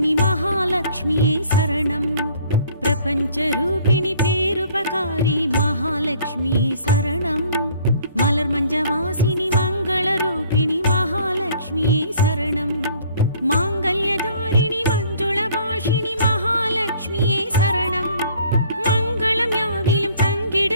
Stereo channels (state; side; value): inverted; both; correlation -0.57